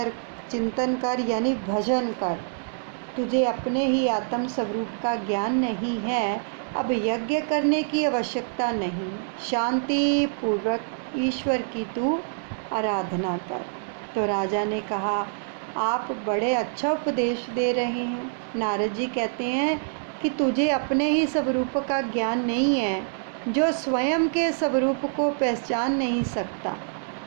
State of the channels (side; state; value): left; silent; digital silence